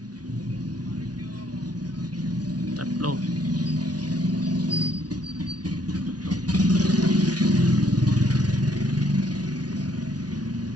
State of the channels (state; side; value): late; left; 0.69 ms